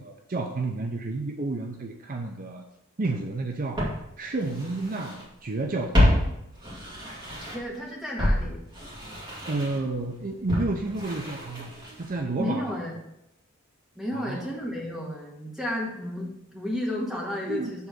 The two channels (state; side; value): normal; both; correlation 0.74